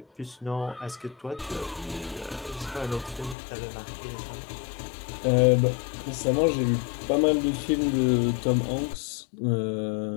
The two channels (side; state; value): right; drops out; at 3.4 s